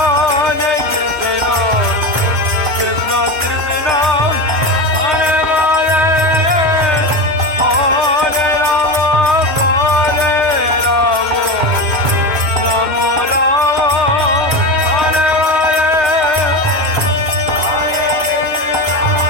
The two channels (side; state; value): left; late; 3.2 ms